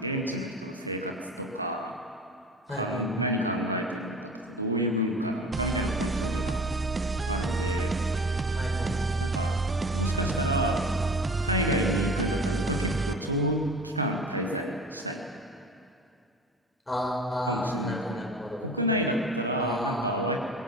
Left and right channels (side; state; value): both; normal; correlation 0.38